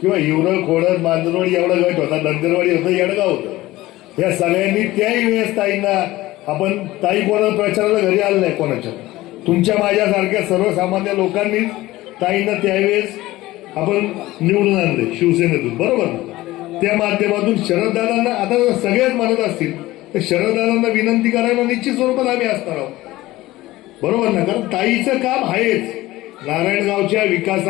किंवा हिवरं खोडद मांजरवाडी एवढा गट होता, नंदरवाडी होतं, येडगाव होतं. या सगळ्यांनी त्याही वेळेस ताईंना आपण ताई कोणा प्रचाराला घरी आलं नाही कोणाच्या. तुमच्या माझ्यासारख्या सर्वसामान्य लोकांनीच ताईंना त्यावेळेस आपण निवडून आणले शिवसेनेतून, बरोबर. त्या माध्यमातून शरददादांना आता सगळेच म्हणत असतील तर शरददादांना विनंती करायला निश्चित स्वरूपात आम्ही असणार आहोत, बरोबर ना. कारण ताईचं काम आहेच. नारायणगावच्या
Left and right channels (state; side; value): quieter; right; 17.7 dB